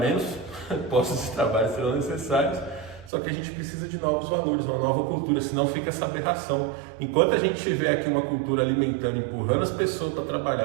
postos de trabalho serão necessários. Só que a gente precisa de novos valores, uma nova cultura, senão fica essa aberração. Enquanto a gente tiver aqui uma cultura alimentando, empurrando as pessoas para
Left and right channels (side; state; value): left; drops out; at 3.1 s